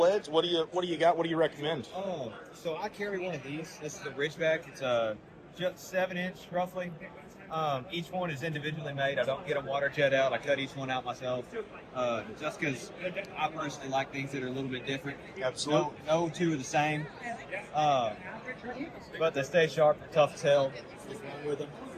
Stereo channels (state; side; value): identical; both; correlation 1.00